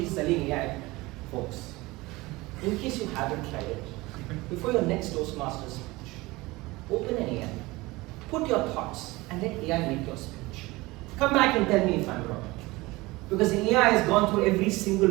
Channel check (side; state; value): left; quieter; 21.3 dB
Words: he's selling AI. Folks, in case you haven't tried it, before your next Toastmasters speech, open an AI, put your thoughts, and let AI make your speech. Come back and tell me if I'm wrong. Because AI has gone through every single